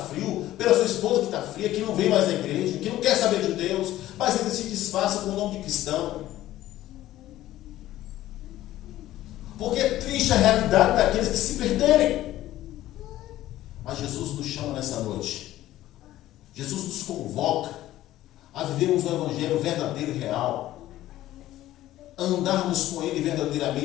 pela sua esposa que está fria, que não vem mais na igreja, que não quer saber de Deus, mas ele se disfarça com o nome de cristão. Porque é triste a realidade daqueles que se perderem. Mas Jesus nos chama nessa noite. Jesus nos convoca a vivermos o evangelho verdadeiro e real. A andarmos com ele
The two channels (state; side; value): quieter; right; 14.5 dB